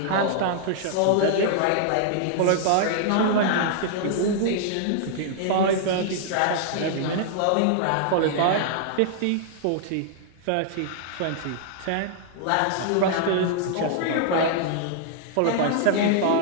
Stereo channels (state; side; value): different; both; correlation -0.01